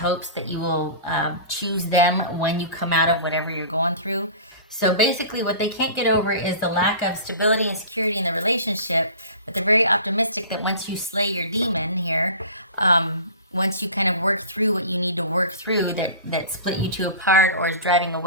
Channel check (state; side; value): inverted; both; correlation -0.38